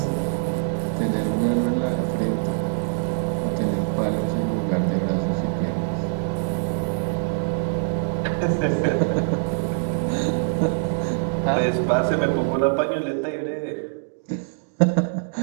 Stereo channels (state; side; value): silent; left; digital silence